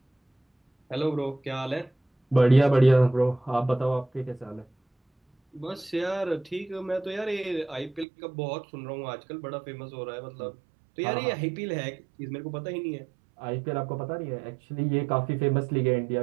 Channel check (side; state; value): left; drops out; at 8.1 s